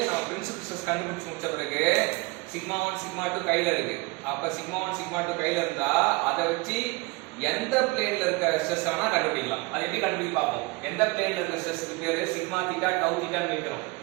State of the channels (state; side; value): quieter; left; 25.2 dB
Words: நம்ம பிரின்சிபல் ஸ்ட்ரெஸ் கண்டுபிடிச்சு முடிச்ச பிறகு சிக்மா 1 சிக்மா 2 கையில இருக்கு. அப்ப சிக்மா 1 சிக்மா 2 கையில இருந்தா அதை வச்சு எந்த பிளேன்ல இருக்க ஸ்ட்ரெஸ் ஆனா கண்டுபிடிக்கலாம். அது எப்படி கண்டுபிடிக்க பார்ப்போம். எந்த பிளேன்ல இருக்க ஸ்ட்ரெஸ்க்கு பேரு சிக்மா தீட்டா டவு தீட்டான்னு வைக்கிறோம்.